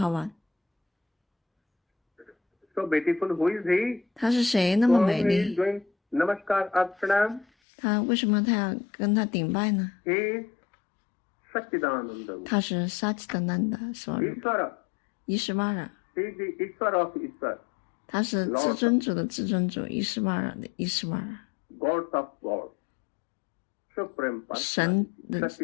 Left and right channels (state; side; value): drops out; right; at 7.5 s